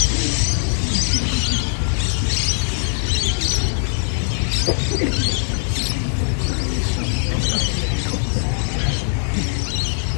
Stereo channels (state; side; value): silent; right; 65 dB below the other